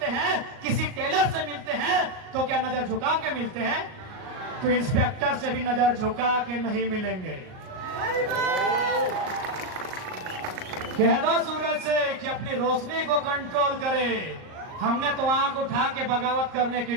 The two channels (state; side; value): late; left; 38 ms